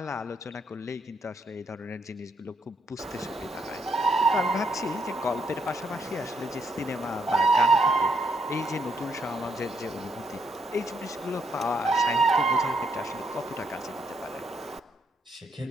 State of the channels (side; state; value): both; normal; correlation 0.74